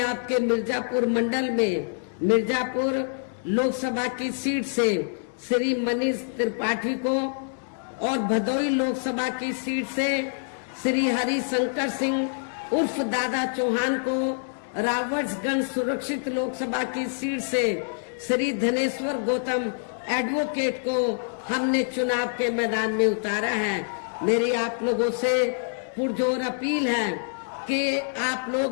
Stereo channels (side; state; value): right; silent; digital silence